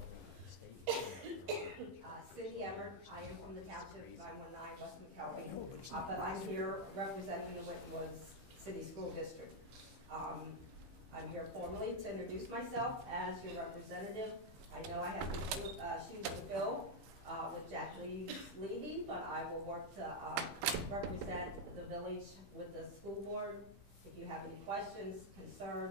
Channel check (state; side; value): late; left; 15 ms